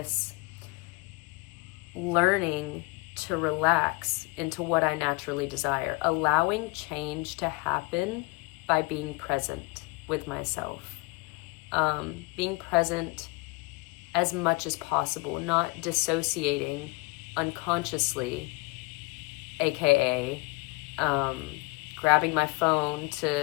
learning to relax into what I naturally desire, allowing change to happen by being present with myself, being present as much as possible, not dissociating unconsciously, aka grabbing my phone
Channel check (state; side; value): quieter; right; 25.4 dB